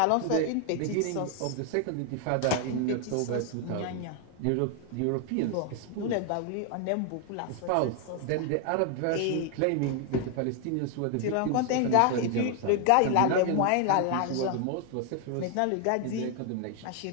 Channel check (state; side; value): different; both; correlation 0.00